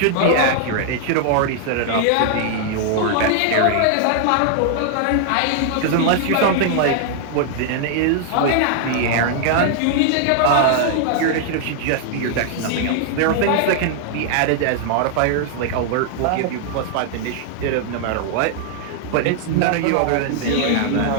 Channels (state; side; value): different; both; correlation 0.00